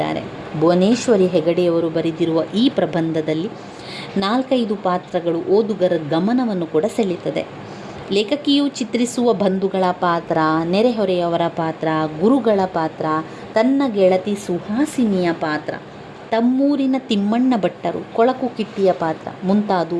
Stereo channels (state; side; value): identical; both; correlation 1.00